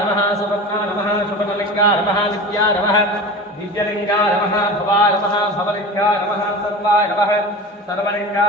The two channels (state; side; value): normal; both; correlation 0.32